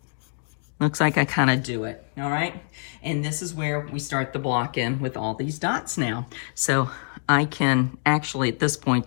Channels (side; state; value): right; silent; digital silence